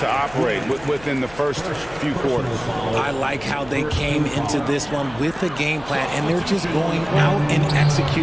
operate within the first few quarters. I like how they came into this one with a game plan, and they're just going out and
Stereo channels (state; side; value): noise; left; hum, 21 dB below the sound